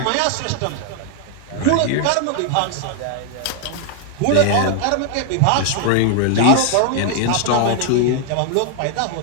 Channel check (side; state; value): both; different; correlation 0.00